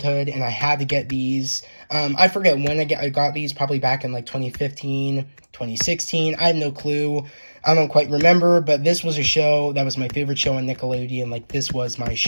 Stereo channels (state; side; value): inverted; both; correlation -1.00